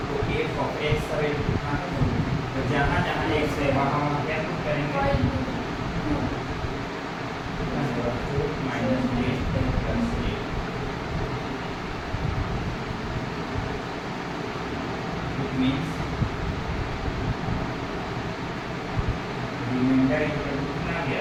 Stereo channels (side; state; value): both; identical; correlation 1.00